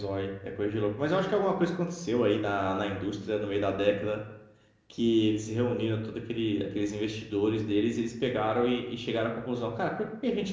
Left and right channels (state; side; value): identical; both; correlation 1.00